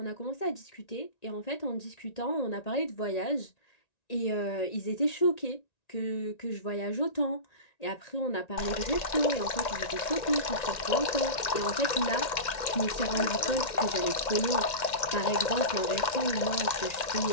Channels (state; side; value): late; right; 1.9 ms